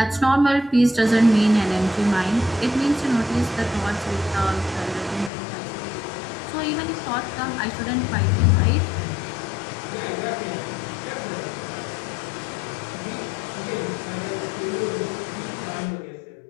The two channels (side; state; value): right; drops out; at 5.3 s